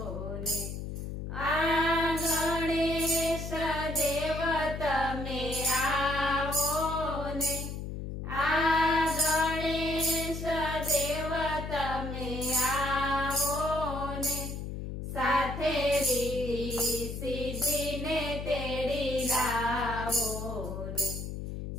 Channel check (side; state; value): left; noise; hum, 6 dB below the sound